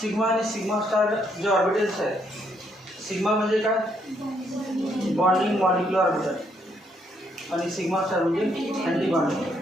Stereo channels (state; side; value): normal; both; correlation 0.72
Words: सिग्मा आणि सिग्मा स्टार जे ऑर्बिटल्स आहेत, सिग्मा म्हणजे काय, बॉन्डिंग मॉलिक्युलर ऑर्बिटल आणि सिग्मा स्टार म्हणजे अँटी बॉन्डिंग.